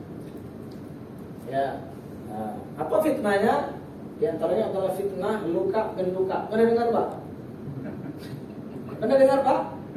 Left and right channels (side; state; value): both; identical; correlation 1.00